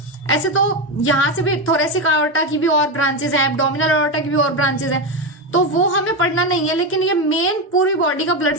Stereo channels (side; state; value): both; normal; correlation 0.12